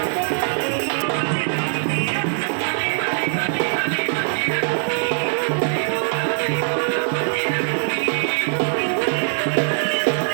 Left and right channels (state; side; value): silent; left; digital silence